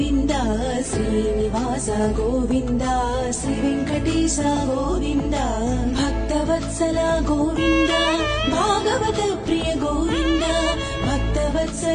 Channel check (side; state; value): both; identical; correlation 1.00